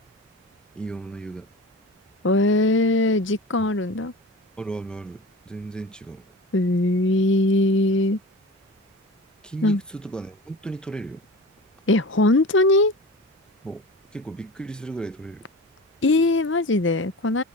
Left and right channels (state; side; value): normal; both; correlation 0.34